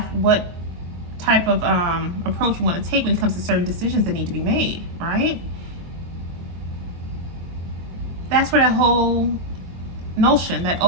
what type of approach we want to take when it comes to certain decisions that need to be made, right? That's where that whole notion, that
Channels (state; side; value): late; left; 23 ms